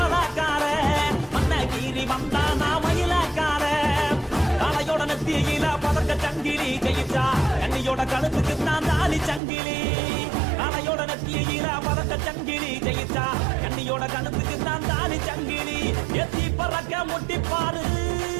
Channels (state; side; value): drops out; left; at 9.4 s